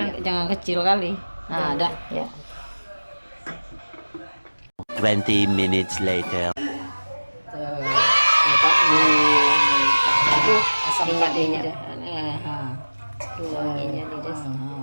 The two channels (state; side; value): inverted; both; correlation -1.00